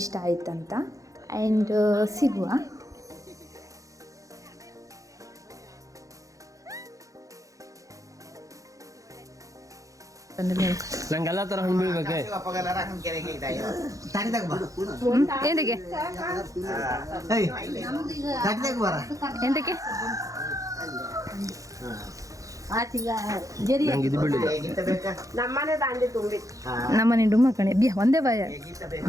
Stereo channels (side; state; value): left; late; 0.16 ms